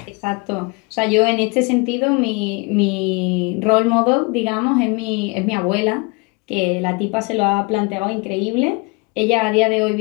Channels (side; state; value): right; quieter; 28.4 dB